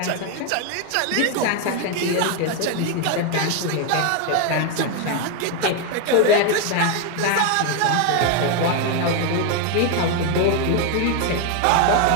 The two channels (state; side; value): different; both; correlation 0.01